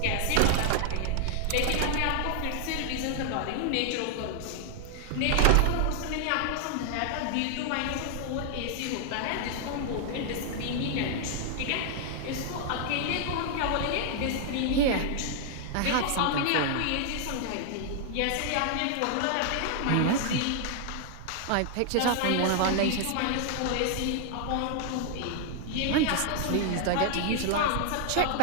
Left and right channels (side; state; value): both; different; correlation 0.00